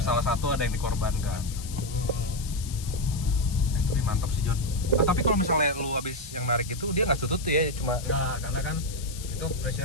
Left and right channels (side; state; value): left; noise; hiss, 13 dB below the sound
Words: salah satu ada yang dikorbankan. Tapi mantap sih, John. Tapi kalau misalnya lu habis yang narik itu dia nggak tutut tuh ya, cuma Nah, karena kan itu